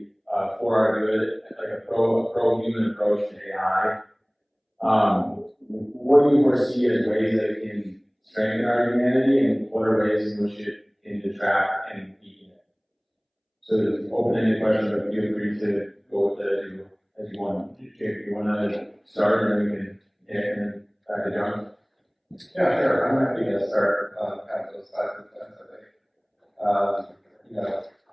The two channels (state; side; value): identical; both; correlation 1.00